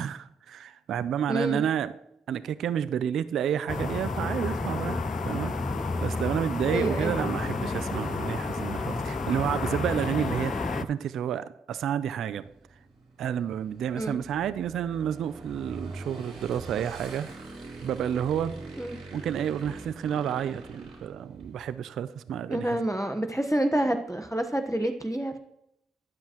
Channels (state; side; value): quieter; left; 3.8 dB